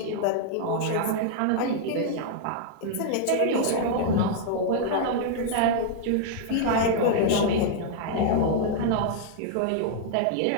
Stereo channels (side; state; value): both; different; correlation -0.01